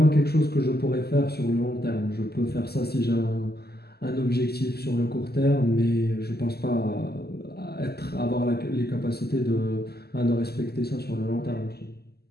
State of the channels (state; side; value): late; right; 0.46 ms